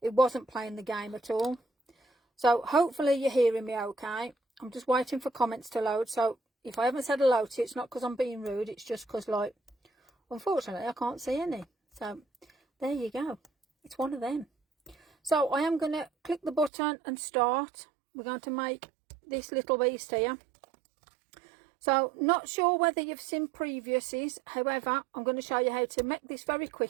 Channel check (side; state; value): left; drops out; at 16.7 s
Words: It wasn't playing the game at all. So hopefully you're hearing me okay. I'm just waiting for comments to load. So if I haven't said hello to you, it's not because I'm being rude. It's just because, unfortunately, I can't see any. So there you go. It's one of them. So I am going to click the button and start. We're going to make this little beast here. So not sure whether you've seen previously, however I'm going to show you how to make this very